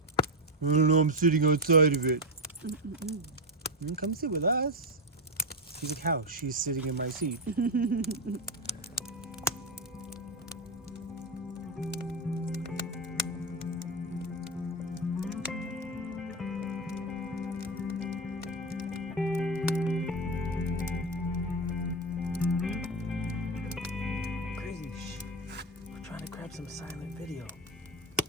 I don't know. I'm sitting outside of it. Come sit with us. She's like, how? She's sitting in my seat. Crazy. Shh. We're trying to grab some silent video.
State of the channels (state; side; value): normal; both; correlation 0.11